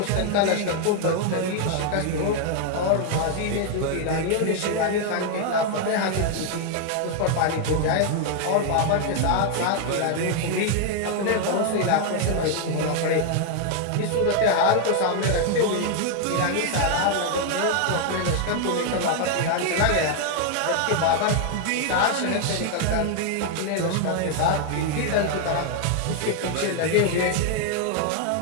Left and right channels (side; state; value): both; different; correlation 0.00